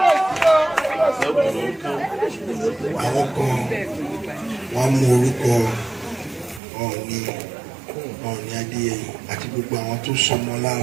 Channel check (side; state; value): left; drops out; at 6.6 s